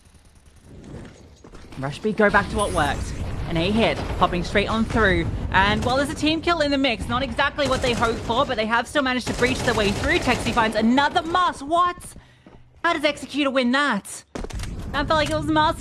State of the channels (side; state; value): both; identical; correlation 1.00